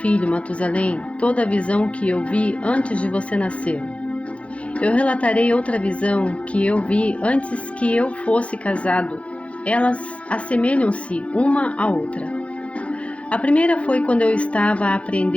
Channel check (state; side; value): late; right; 0.062 ms